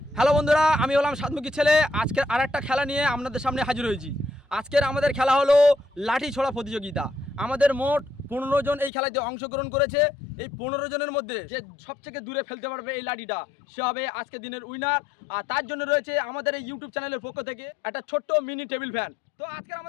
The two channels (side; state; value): right; drops out; at 8.9 s